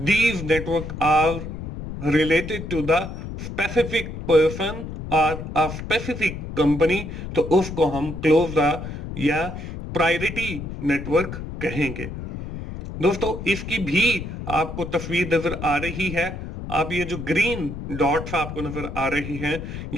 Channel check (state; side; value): noise; left; rumble, 8 dB below the sound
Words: network are related to the specific person और अ स्पेसिफिक कंपनी, तो उसको हम क्लोज या प्रायोरिटी नेटवर्क कहेंगे। दोस्तों इसकी भी आपको तस्वीर नजर आ रही है। आप ये जो ग्रीन डॉट्स आपको नजर आ रही हैं,